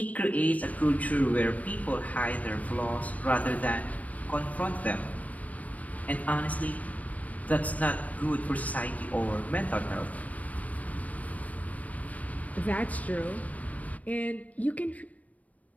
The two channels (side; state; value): right; late; 0.070 ms